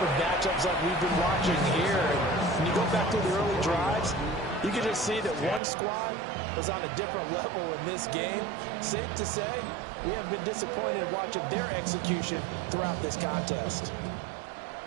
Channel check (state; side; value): drops out; left; at 5.6 s